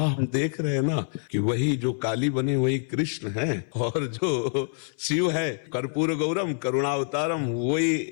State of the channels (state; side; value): silent; right; 61 dB below the other